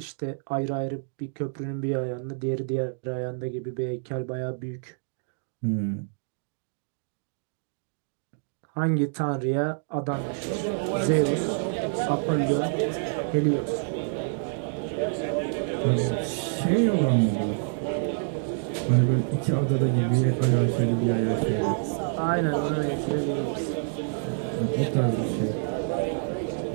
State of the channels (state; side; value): silent; left; digital silence